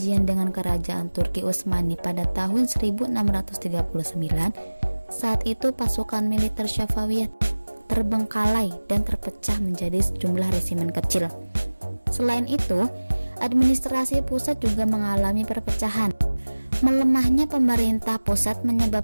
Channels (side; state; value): both; inverted; correlation -1.00